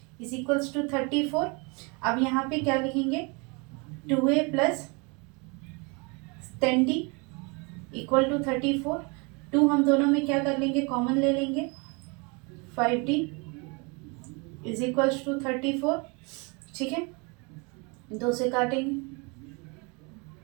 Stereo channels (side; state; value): left; quieter; 30.6 dB